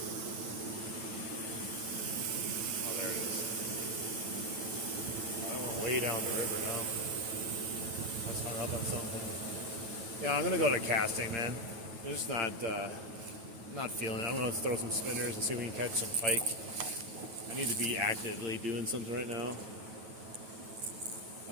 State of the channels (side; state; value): left; late; 8.8 ms